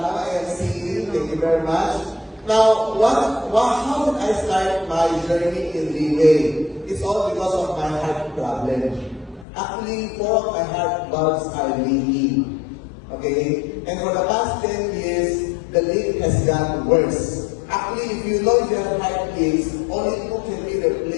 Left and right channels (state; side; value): drops out; right; at 9.5 s